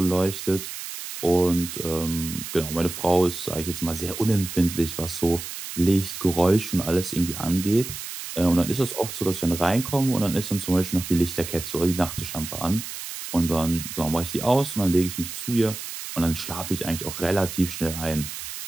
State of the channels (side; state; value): right; noise; hiss, 9 dB below the sound